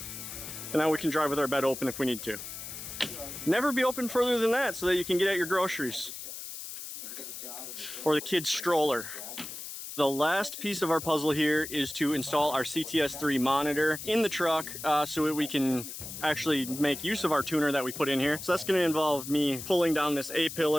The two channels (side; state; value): left; noise; hiss, 9 dB below the sound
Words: And now we can drive with our bed open if we need to. Never be open further than that so that you can get at your groceries. Or the kid's stroller. The last piece of our puzzle here is to install our CTS3 monitor in the truck so that we can actually make use of our tuner that we put in here. So that's going to involve me pulling down this